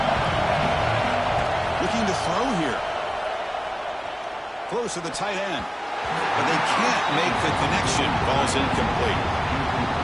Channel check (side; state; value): both; identical; correlation 1.00